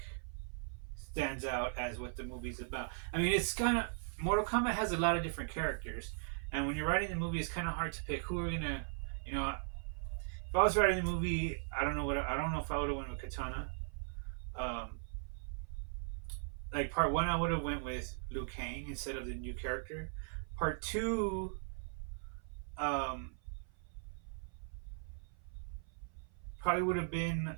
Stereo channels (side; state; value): left; silent; 52 dB below the other